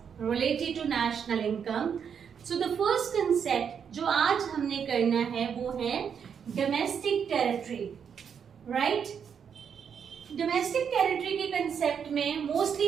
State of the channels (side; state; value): left; quieter; 7.4 dB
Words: related to national income. So the first concept जो आज हमने करना है वो है domestic territory, right? Domestic territory के concept में mostly